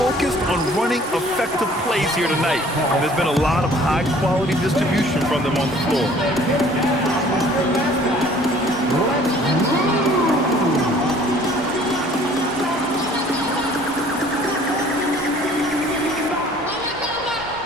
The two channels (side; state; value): both; normal; correlation 0.53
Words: on running effective plays here tonight. And there's been a lot of high-quality distribution from them on the floor.